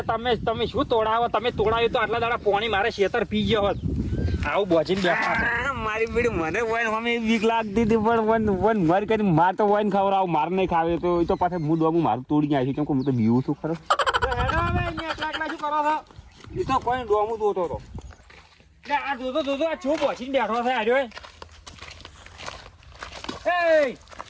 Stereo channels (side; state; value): both; identical; correlation 1.00